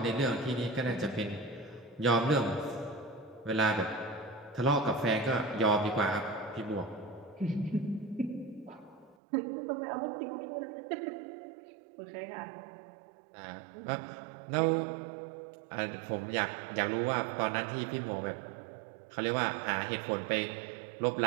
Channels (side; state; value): left; drops out; at 9.2 s